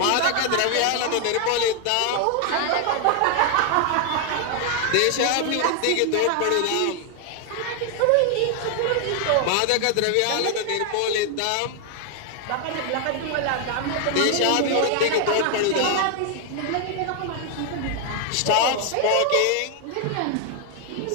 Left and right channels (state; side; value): different; both; correlation 0.00